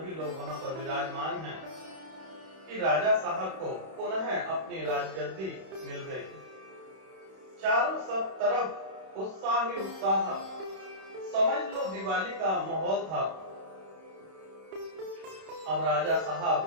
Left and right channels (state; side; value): late; left; 31 ms